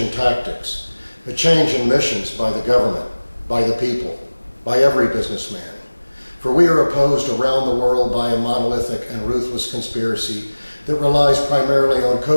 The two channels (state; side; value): inverted; both; correlation -1.00